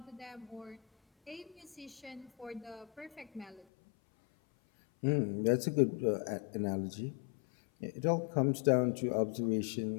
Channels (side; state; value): right; drops out; at 3.7 s